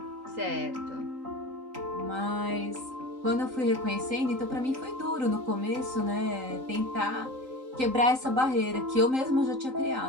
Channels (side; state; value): left; late; 3.8 ms